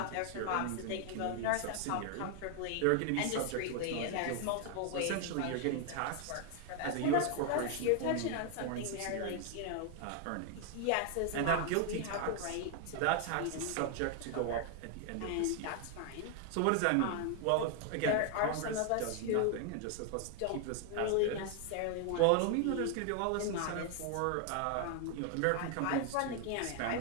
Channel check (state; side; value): different; both; correlation 0.00